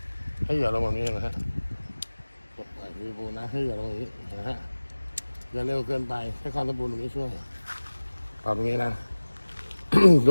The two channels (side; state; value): both; inverted; correlation -1.00